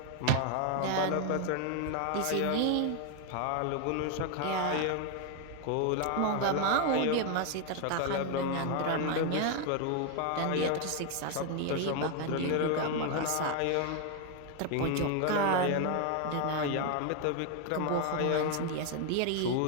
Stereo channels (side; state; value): both; different; correlation 0.01